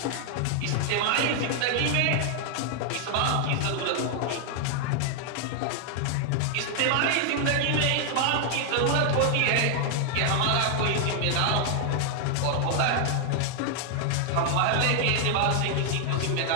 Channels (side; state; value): both; different; correlation 0.00